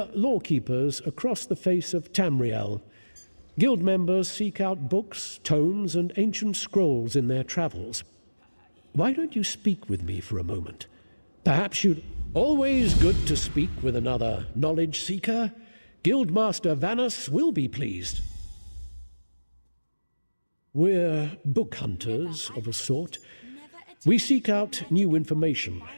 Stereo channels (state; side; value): inverted; both; correlation -1.00